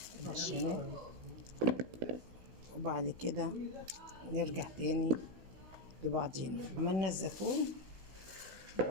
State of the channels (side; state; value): left; late; 16 ms